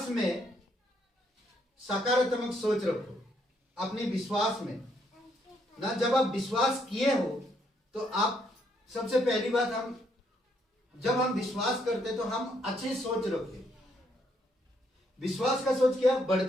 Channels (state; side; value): normal; both; correlation 0.73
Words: में सकारात्मक सोच रखो। अपने विश्वास में ना, जब आप विश्वास किए हो तो आप, सबसे पहली बात, जब हम विश्वास करते तो हम अच्छी सोच रखते। विश्वास का सोच क्या